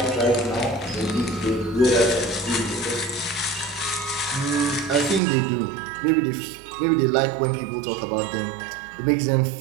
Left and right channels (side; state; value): left; drops out; at 5.2 s